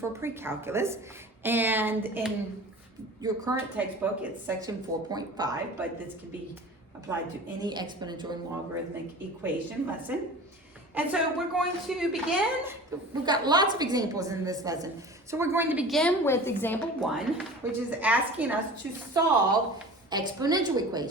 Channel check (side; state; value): both; normal; correlation 0.39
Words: pre-calculus, and in your current textbook it's section 4.5, but this can be applied to any exponential and logarithmic equation lesson. And so we're going to begin. We've got lots of examples in this lesson. So we're going to begin with example 1, which is asking us to solve exponential